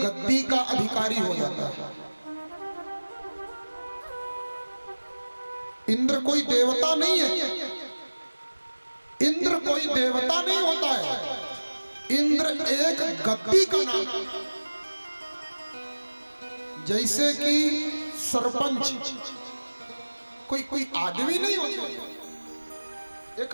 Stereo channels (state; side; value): inverted; both; correlation -1.00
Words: का अधिकारी हो जाता है। इंद्र कोई देवता नहीं है। इंद्र कोई देवता नहीं होता है। इंद्र एक गद्दी का नाम है। जैसे कि सरपंच कोई आदमी नहीं होता,